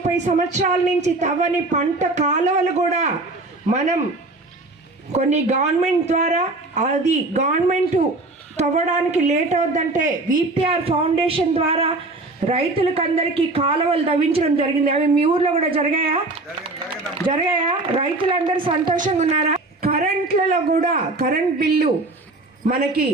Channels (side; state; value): left; quieter; 3.0 dB